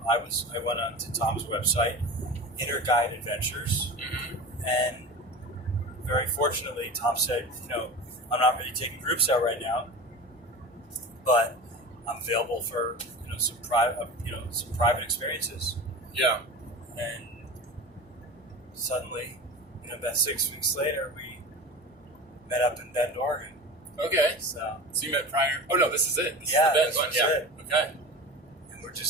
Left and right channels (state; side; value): normal; both; correlation 0.32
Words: I went on to Tom's website, Inner Guide Adventures, and very fortunately, Tom said, I'm not really taking groups out right now, but I'm available for some private experiences. Yeah. And suddenly, about 6 weeks later, we met up in Bend, Oregon. Okay. So you met prior? Oh no, this is it. This Yeah, is the Bend this one. was Yeah. it. Okay. and we're